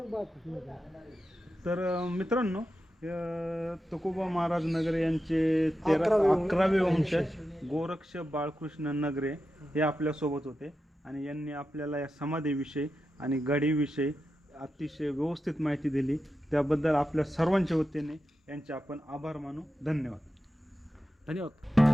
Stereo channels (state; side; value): normal; both; correlation 0.90